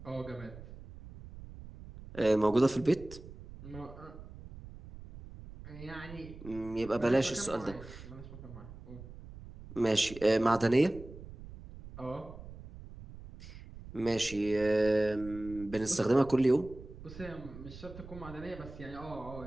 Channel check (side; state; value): right; noise; rumble, 15 dB below the sound